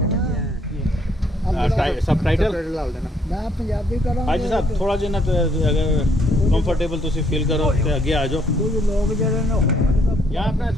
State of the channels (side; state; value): both; normal; correlation 0.68